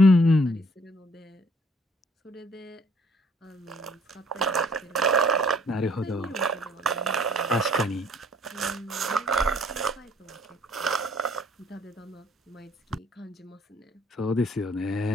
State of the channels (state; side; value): normal; both; correlation 0.61